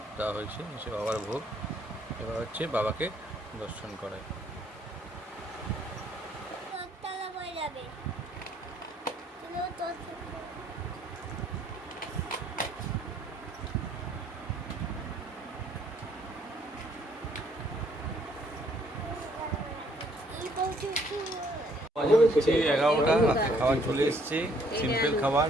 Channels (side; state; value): both; normal; correlation 0.65